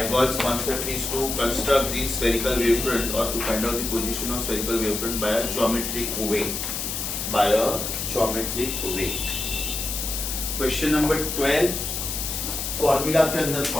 concept is to construct the spherical wavefront or to find out the position of spherical wavefront by a geometric way. By a geometric way. Question number 12. Formula के अंदर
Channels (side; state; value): left; noise; hiss, 3 dB below the sound